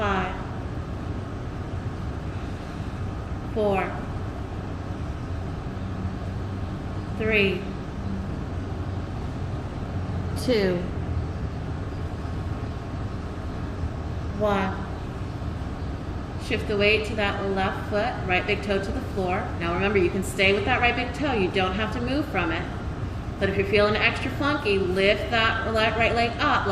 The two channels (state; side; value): identical; both; correlation 1.00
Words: 4, 3, 2, 1. Shift the weight to that left foot, right big toe to the floor. Now remember, you can stay with that right big toe. You don't have to move from it. But if you're feeling extra funky, lift that right leg up